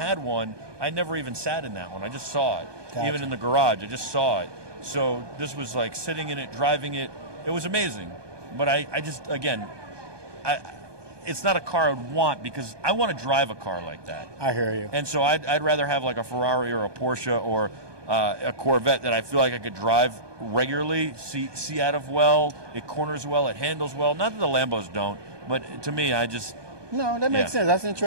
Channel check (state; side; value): late; left; 1.2 ms